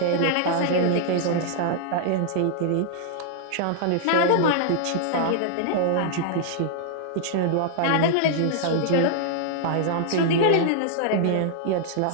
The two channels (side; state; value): both; different; correlation -0.01